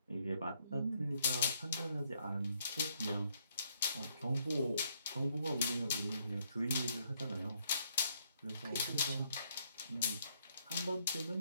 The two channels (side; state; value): both; inverted; correlation -0.71